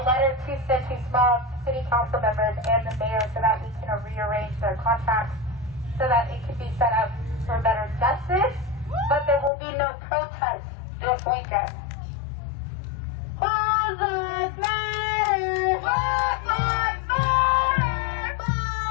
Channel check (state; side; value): drops out; right; at 9.5 s